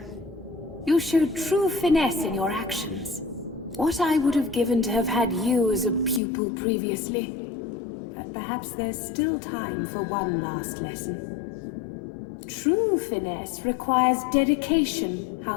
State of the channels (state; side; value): drops out; right; at 6.2 s